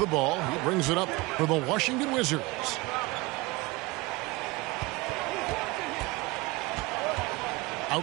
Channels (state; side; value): quieter; left; 23.0 dB